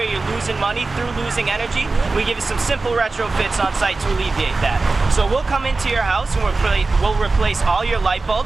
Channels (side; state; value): left; quieter; 3.6 dB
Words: you're losing money through losing energy. We give you some simple retrofits on site to alleviate that. So we'll come into your house and we'll replace all your light